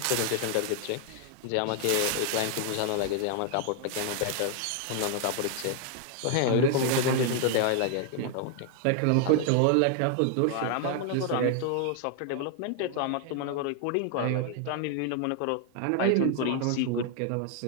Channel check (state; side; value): different; both; correlation 0.00